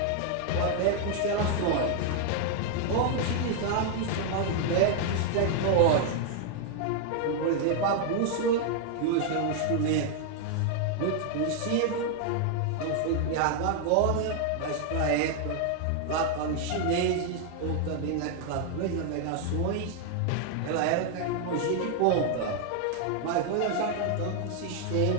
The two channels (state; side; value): different; both; correlation 0.00